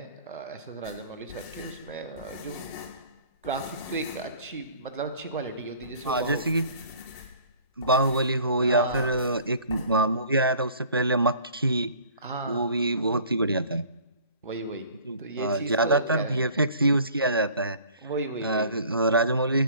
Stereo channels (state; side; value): inverted; both; correlation -0.51